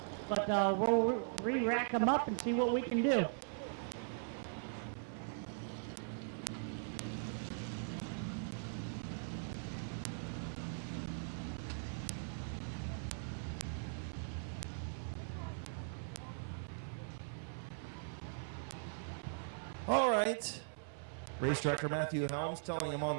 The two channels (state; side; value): silent; left; 51 dB below the other